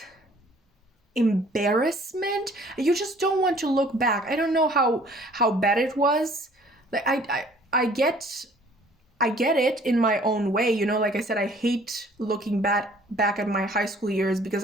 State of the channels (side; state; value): both; normal; correlation 0.55